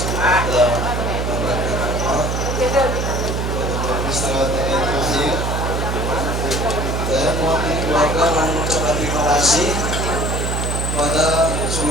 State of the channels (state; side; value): noise; right; hum, 1 dB below the sound